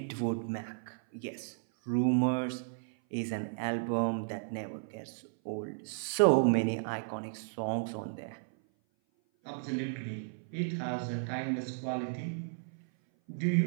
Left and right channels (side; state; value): left; silent; 55 dB below the other